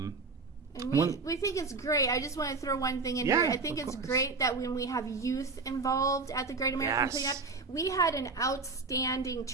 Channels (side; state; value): left; quieter; 4.0 dB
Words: we think it's great. I just want to throw one thing in here. I think it's great that when we have youth involved at the Great American Cleanup, we had an outstanding